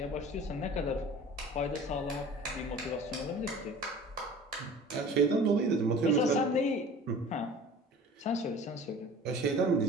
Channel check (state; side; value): normal; both; correlation 0.43